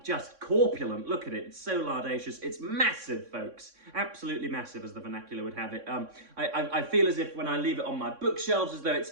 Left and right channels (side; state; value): left; late; 3.6 ms